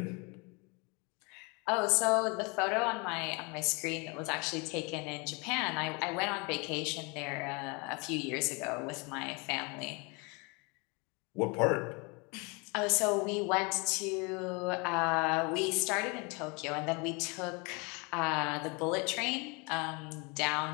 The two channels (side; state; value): right; quieter; 30.0 dB